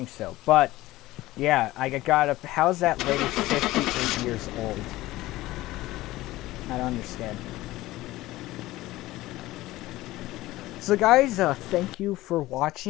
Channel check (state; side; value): quieter; right; 17.4 dB